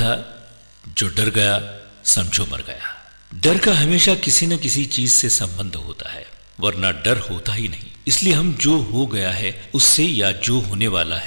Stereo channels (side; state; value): both; inverted; correlation -1.00